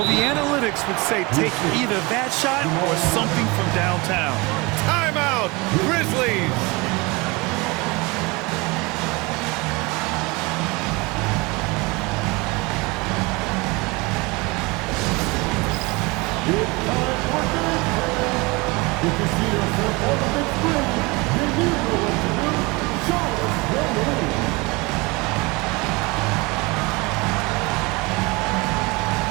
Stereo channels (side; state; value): left; quieter; 25.4 dB